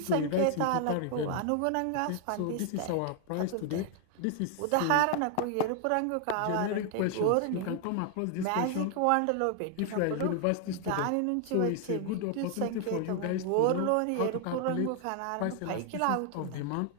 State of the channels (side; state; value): both; different; correlation 0.00